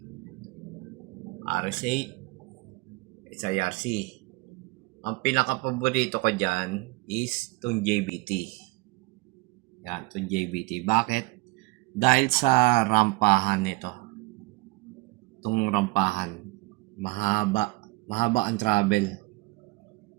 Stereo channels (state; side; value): quieter; left; 22.3 dB